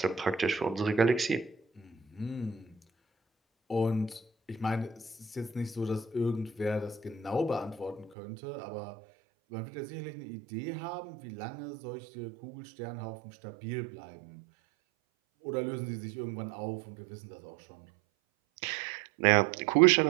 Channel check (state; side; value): drops out; left; at 8.1 s